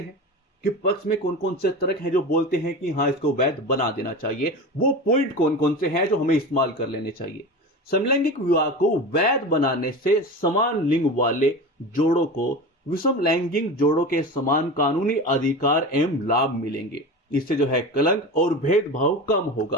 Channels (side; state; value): both; normal; correlation 0.29